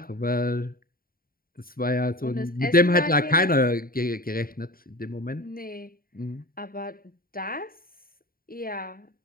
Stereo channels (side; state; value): right; late; 0.43 ms